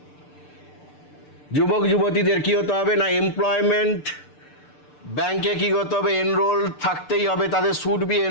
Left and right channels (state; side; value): late; right; 6.8 ms